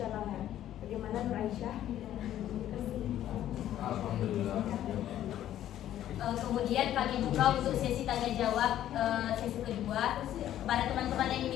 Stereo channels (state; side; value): quieter; right; 12.0 dB